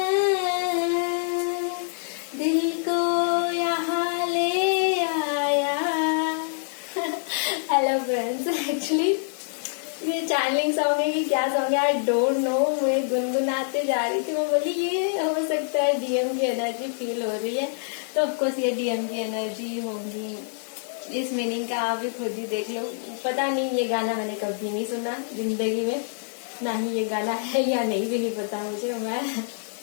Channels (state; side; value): silent; right; 61 dB below the other